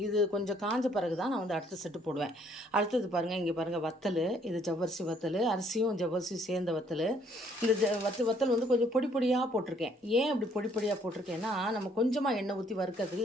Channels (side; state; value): both; normal; correlation 0.64